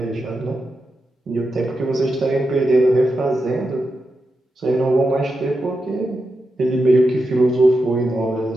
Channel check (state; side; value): normal; both; correlation 0.88